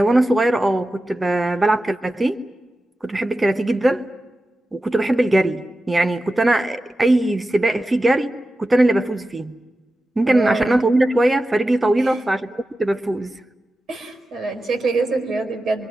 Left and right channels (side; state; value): both; normal; correlation 0.93